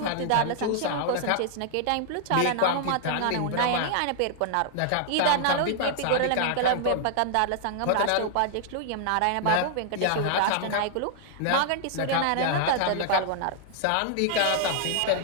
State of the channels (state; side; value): different; both; correlation -0.01